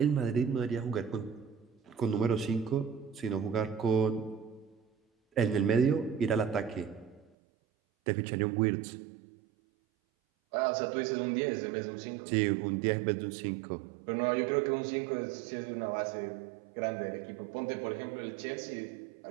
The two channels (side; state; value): left; drops out; at 7.3 s